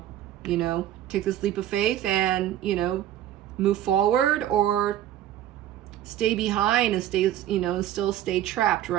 You know, take this leap of faith and, you know, move forward, or stay behind and stay, you know, and still stay trapped,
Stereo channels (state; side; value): quieter; left; 12.2 dB